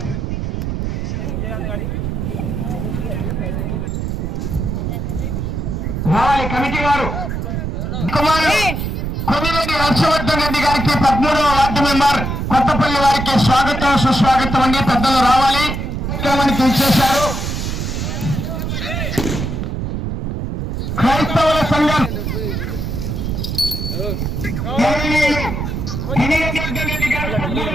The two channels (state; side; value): noise; right; rumble, 3 dB below the sound